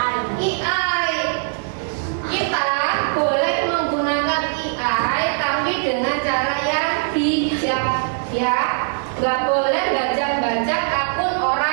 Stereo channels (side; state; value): left; silent; digital silence